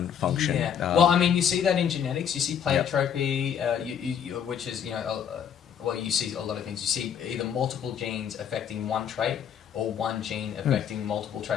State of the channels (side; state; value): right; quieter; 8.4 dB